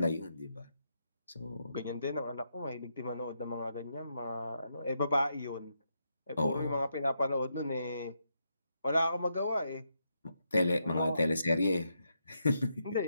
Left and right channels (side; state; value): both; inverted; correlation -0.81